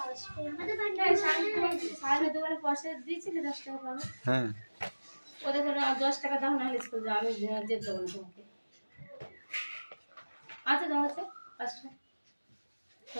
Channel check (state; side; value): inverted; both; correlation -1.00